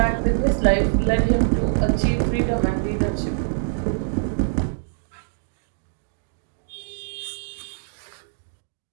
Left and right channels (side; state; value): left; silent; digital silence